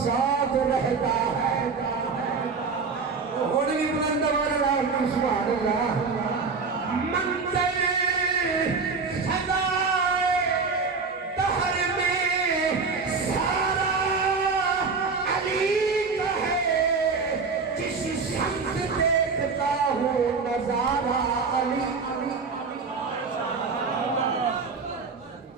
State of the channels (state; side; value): quieter; left; 4.8 dB